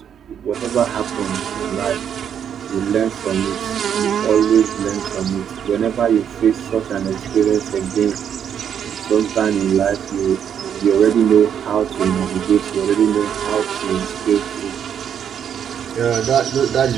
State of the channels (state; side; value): quieter; left; 8.6 dB